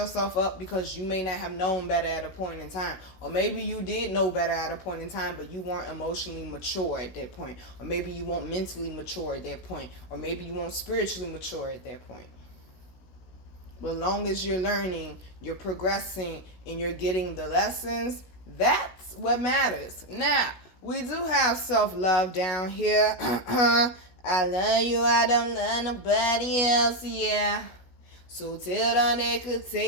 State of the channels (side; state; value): right; late; 16 ms